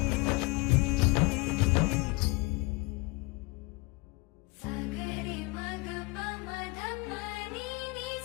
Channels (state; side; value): quieter; right; 25.7 dB